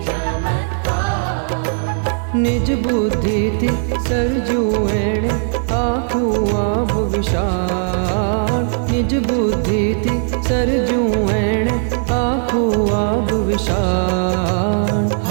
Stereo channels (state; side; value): silent; left; digital silence